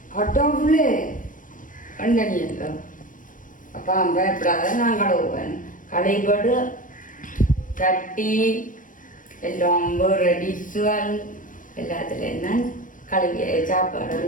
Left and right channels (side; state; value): right; late; 0.38 ms